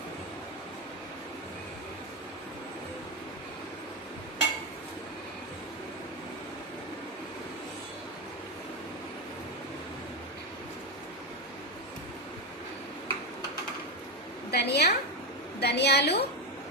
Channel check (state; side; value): normal; both; correlation 0.10